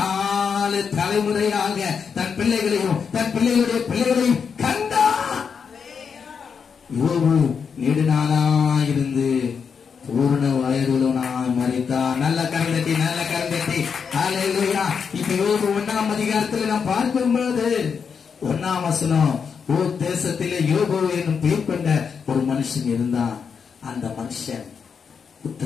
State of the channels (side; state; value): right; quieter; 6.3 dB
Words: தலைமுறையாக தன் பிள்ளைகளையும் தன் பிள்ளைகளுடைய பிள்ளைகளையும் கண்டான். யோபு நெடுநாளாயிருந்து பூர்ண வயதுள்ளவனாய் மரித்தார். நல்ல கரந்தட்டி, நல்ல கரந்தட்டி. ஹல்லேலூயா. இப்ப யோபு 1ஆம் அதிகாரத்தில் நாம் பார்க்கும்போது 1ஆம் வசனம், ஓர் தேசத்திலே யோபு என்னும் பெயர் கொண்ட ஒரு மனுஷன் இருந்தான். அந்த மனுஷன்